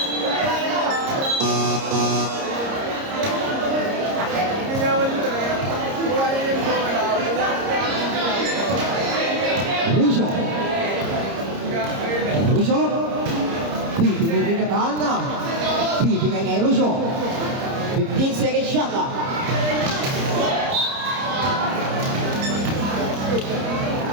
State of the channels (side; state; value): left; late; 30 ms